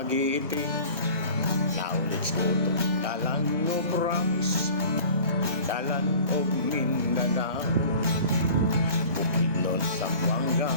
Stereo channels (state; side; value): inverted; both; correlation -0.44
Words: Now let's go to Dalan of Promise, Dalan of Mindanao, Bukidnon, Zamboanga,